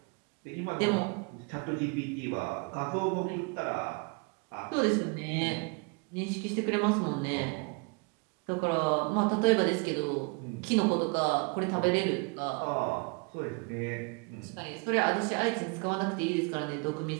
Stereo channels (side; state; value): left; quieter; 32.6 dB